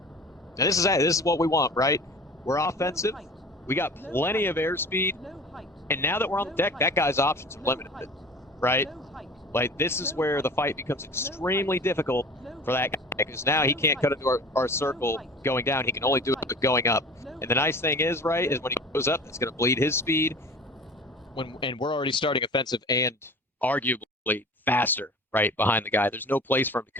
And this is what we want, right? We're offensive. We got plenty of airspeed. And now that we're on the deck, that guy's options are limited, right? Like, this is where the fight becomes extremely difficult for that guy, because now he can't cut into our circle going down. He can only do it going up. And the nice thing is, right, is when he goes up, it's going to bleed his speed. And we're already starting offensive and arguably faster, right, behind the guy. There's no place for him to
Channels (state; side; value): normal; both; correlation 0.41